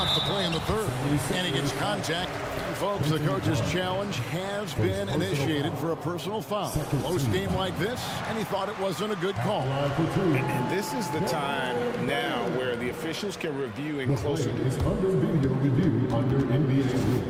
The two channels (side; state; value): both; identical; correlation 1.00